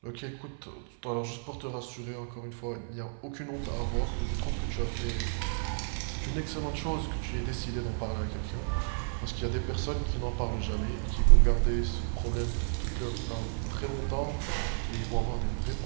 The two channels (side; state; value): left; silent; 56 dB below the other